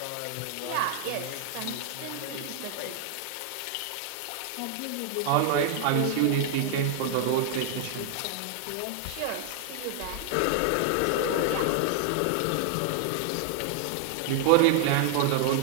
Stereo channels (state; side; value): different; both; correlation 0.00